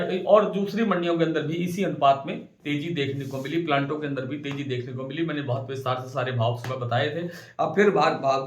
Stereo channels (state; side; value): identical; both; correlation 1.00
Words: और दूसरी मंडियों के अंदर भी इसी अनुपात में तेजी देखने को मिली। प्लांटों के अंदर भी तेजी देखने को मिली। मैंने बहुत विस्तार से सारे भाव सुबह बताए थे, अब फिर भाव